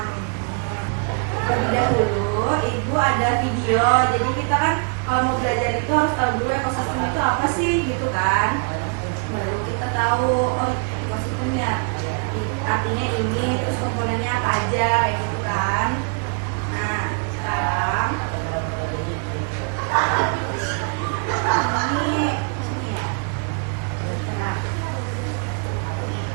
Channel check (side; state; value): left; quieter; 38.0 dB